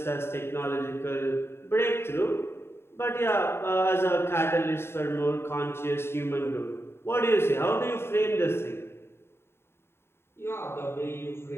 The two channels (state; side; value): late; right; 0.12 ms